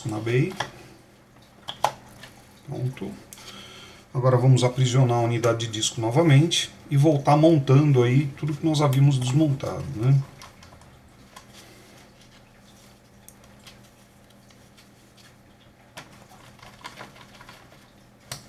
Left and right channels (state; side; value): identical; both; correlation 1.00